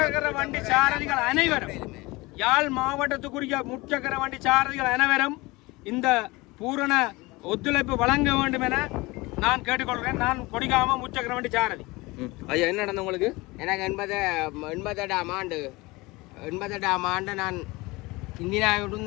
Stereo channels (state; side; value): quieter; right; 22.6 dB